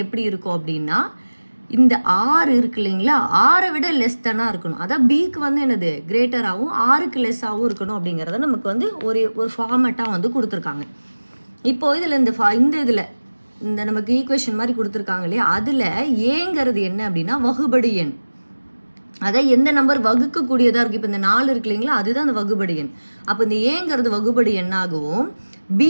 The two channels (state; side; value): inverted; both; correlation -1.00